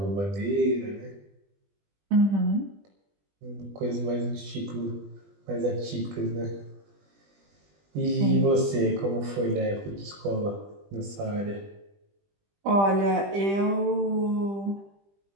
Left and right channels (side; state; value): left; late; 20 ms